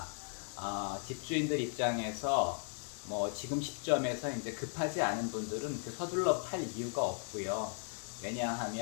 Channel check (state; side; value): silent; right; 53 dB below the other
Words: 집주인들 입장에서 지금 시점에서 이제 급하지 않은 분들은 서둘러 팔 이유가 없고요.